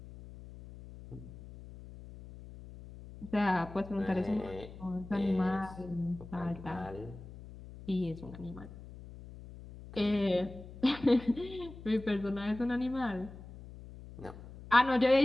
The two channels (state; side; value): noise; left; hum, 15 dB below the sound